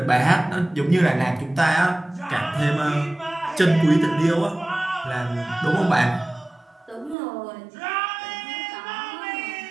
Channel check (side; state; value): left; drops out; at 7.2 s